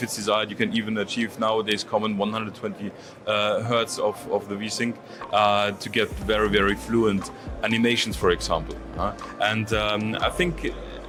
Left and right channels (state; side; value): identical; both; correlation 1.00